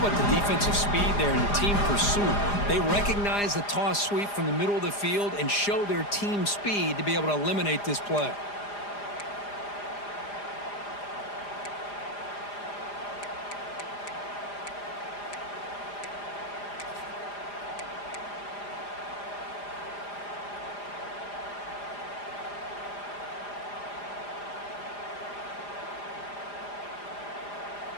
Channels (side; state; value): right; late; 4.9 ms